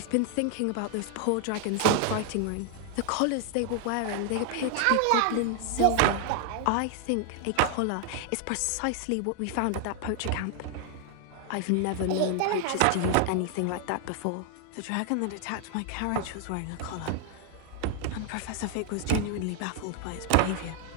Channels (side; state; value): both; different; correlation 0.00